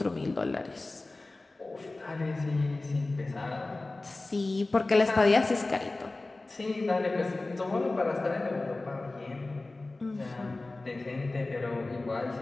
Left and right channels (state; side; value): quieter; right; 3.1 dB